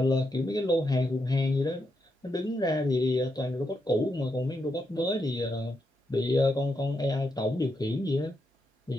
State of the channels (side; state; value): both; normal; correlation 0.83